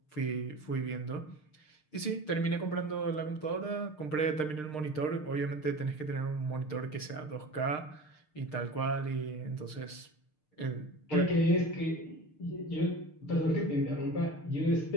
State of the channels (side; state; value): right; late; 6.6 ms